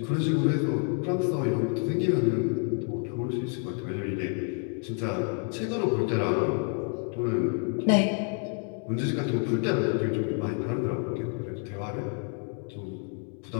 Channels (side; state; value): right; quieter; 37.3 dB